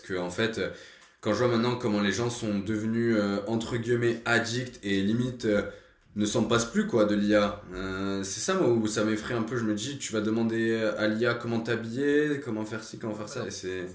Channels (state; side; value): identical; both; correlation 1.00